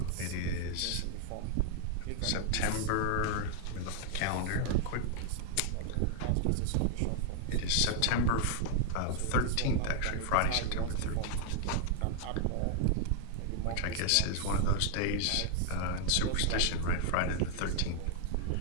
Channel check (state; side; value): different; both; correlation 0.00